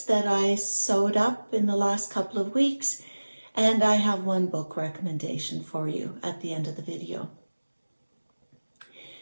that I sewed up in the last couple of weeks, and I have 1 book recommendation for you at the end of the video.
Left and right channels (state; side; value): inverted; both; correlation -1.00